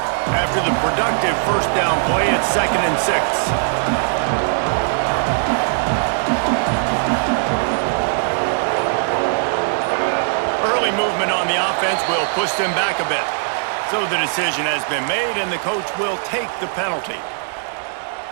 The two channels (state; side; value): silent; left; digital silence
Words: After the productive first down play, it's 2nd and 6. Movement on the offense will push them back a bit. So the decision has been made, and the coach will take the penalty.